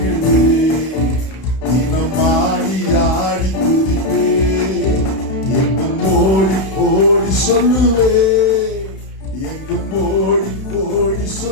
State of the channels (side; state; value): right; late; 31 ms